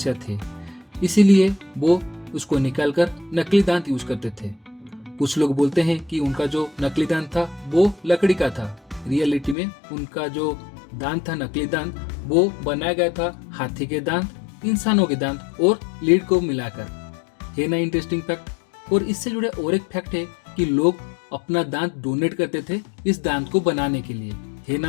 थी, इसीलिए वो उसको निकालकर नकली दांत यूज करते थे। कुछ लोग बोलते हैं कि उनका जो नकली दांत था वो लकड़ी का था। रियलिटी में उनका जो दांत था, नकली दांत, वो बनाया गया था हाथी के दांत, इंसानों के दांत और लीड को मिलाकर। है ना इंटरेस्टिंग फैक्ट। और इससे जुड़े और एक फैक्ट है कि लोग अपना दांत डोनेट करते थे इस दांत को बनाने के लिए। है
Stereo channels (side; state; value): right; drops out; at 9.6 s